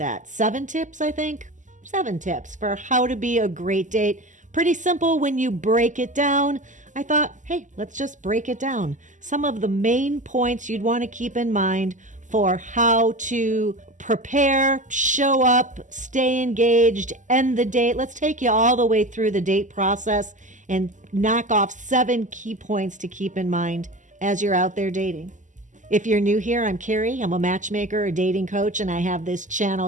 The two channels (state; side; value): late; left; 0.37 ms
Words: 7 tips, I think. 7 tips for how to be a great date. Pretty simple when you break it down. I thought, hey, let's just break it down. Some of the main points you'd want to keep in mind for how to prepare, show up, stay engaged, end the date. Let's take you all the way through the date process and knock off 7 key points to keep in mind as you're out there dating. If you're new here, I'm Carey. I'm a matchmaker, a dating coach, and I have this channel